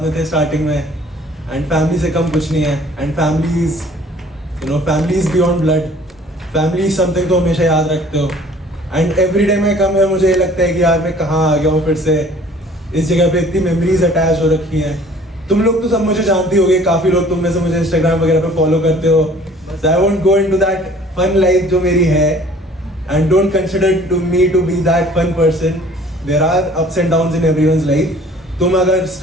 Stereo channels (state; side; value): normal; both; correlation 0.52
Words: में थे स्टार्टिंग में। एंड फैमिली से कम कुछ नहीं है। And family is, you know, family is beyond blood. Family is something तो हमेशा याद रखते हो। एंड एवरी डे में कम है, मुझे ये लगता है कि यार मैं कहाँ आ गया हूँ फिर से। इस जगह पे इतनी मेमोरीज अटैच हो रखी हैं। तुम लोग तो सब मुझे जानती होगे, काफ़ी लोग तुम में से मुझे इंस्टाग्राम वगैरह पे फॉलो करते हो। So I won't go into that fun life जो मेरी है, and don't consider to me to be that fun person. There are ups and downs in everyone's life. तुम अगर